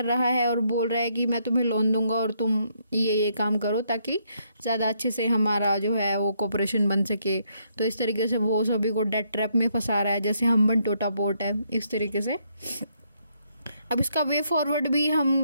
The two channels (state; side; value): inverted; both; correlation -0.73